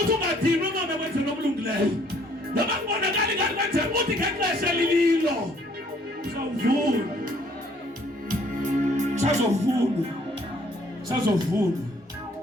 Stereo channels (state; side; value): normal; both; correlation 0.62